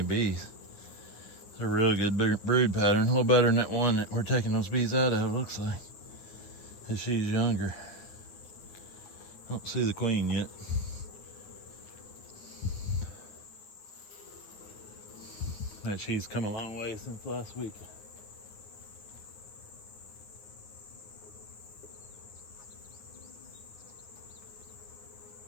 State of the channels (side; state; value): right; late; 9.6 ms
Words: bees. It's a really good brood pattern, a little better than that one that we're taking those bees out of, looks like. Because she's younger. Don't see the queen yet. But she's come a long way since last week.